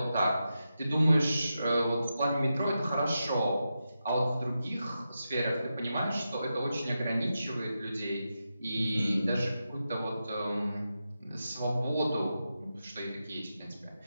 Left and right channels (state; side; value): inverted; both; correlation -0.89